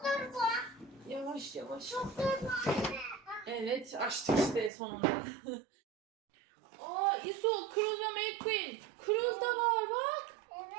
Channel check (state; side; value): drops out; left; at 4.7 s